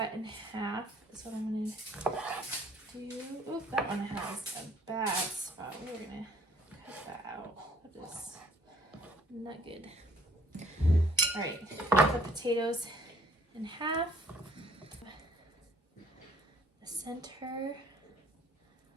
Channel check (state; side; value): normal; both; correlation 0.61